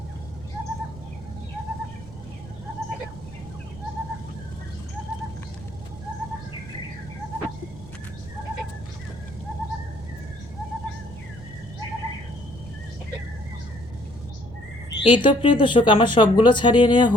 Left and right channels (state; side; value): noise; right; rumble, 16 dB below the sound